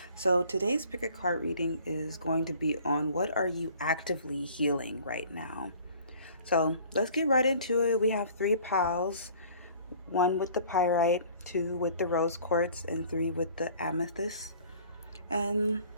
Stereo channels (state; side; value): inverted; both; correlation -0.51